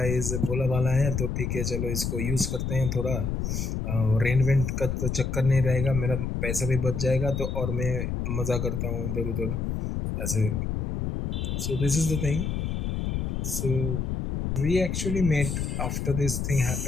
is भोला भाला है, तो ठीक है चलो इसको यूज़ करते हैं थोड़ा, रेंट वेंट का तो चक्कर नहीं रहेगा, मेरा पैसा भी बच जाएगा, तो और मैं मज़ा करता हूँ इधर उधर ऐसे. So this is the thing. So we actually met after this thing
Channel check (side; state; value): left; noise; rumble, 1 dB below the sound